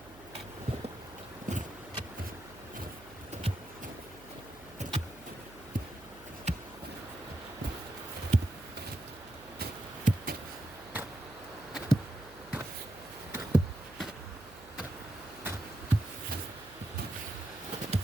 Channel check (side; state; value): right; noise; hum, 19 dB below the sound